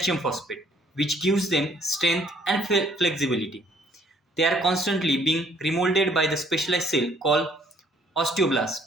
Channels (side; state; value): both; normal; correlation 0.63